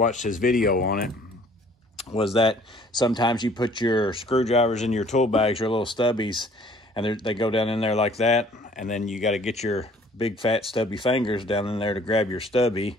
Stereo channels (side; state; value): both; normal; correlation 0.56